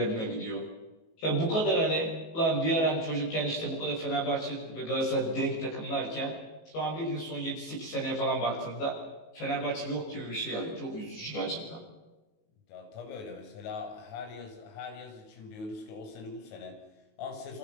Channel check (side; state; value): right; late; 19 ms